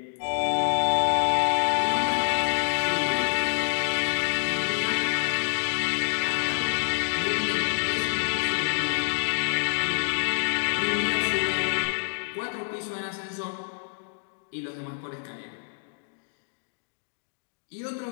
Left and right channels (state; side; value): silent; right; digital silence